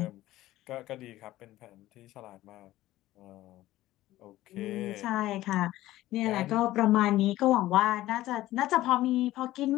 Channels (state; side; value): quieter; right; 15.7 dB